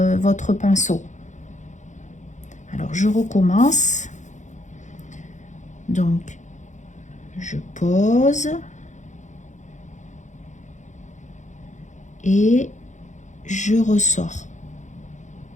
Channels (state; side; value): late; right; 0.35 ms